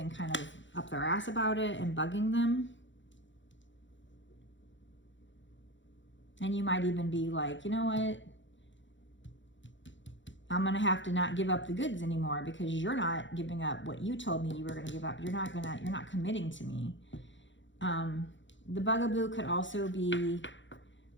kind of up their ass about it and bugging them. And you might even be like, you know what? I'm going to have to not give up the goods anymore because you're not giving up what you told me you were going to give up. You're not committing to me. The bugaboo could also be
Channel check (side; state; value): right; late; 0.54 ms